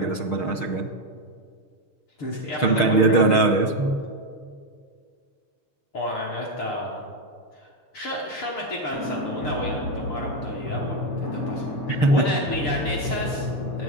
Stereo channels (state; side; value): late; right; 6.4 ms